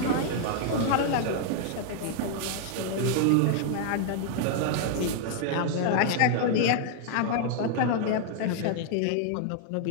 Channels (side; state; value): both; different; correlation 0.00